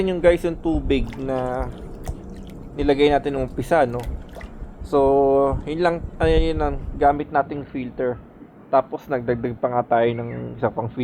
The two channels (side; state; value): both; identical; correlation 1.00